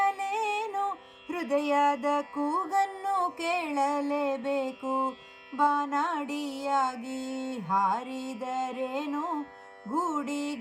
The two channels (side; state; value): both; identical; correlation 1.00